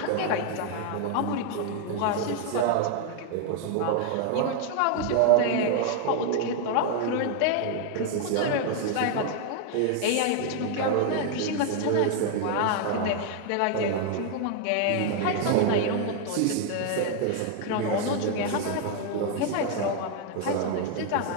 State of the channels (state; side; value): different; both; correlation 0.00